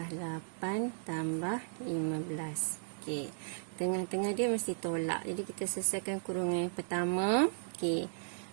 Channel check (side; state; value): left; silent; 54 dB below the other